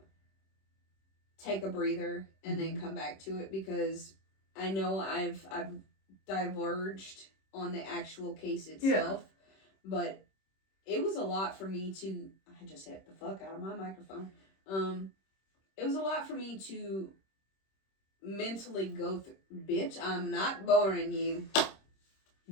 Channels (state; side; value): late; right; 26 ms